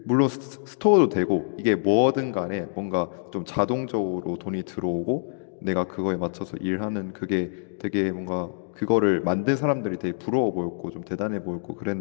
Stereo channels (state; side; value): silent; right; digital silence